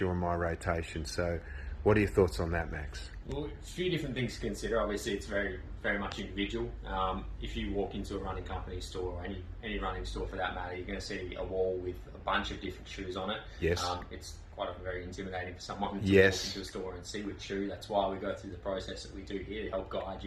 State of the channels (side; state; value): both; identical; correlation 1.00